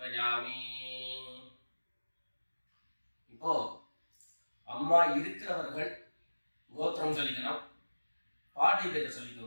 இப்போ அம்மா இருக்கிறவர்கள் கோத்திரம் சொல்லிக்கணும், பாட்டி பேரை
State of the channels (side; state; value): both; inverted; correlation -1.00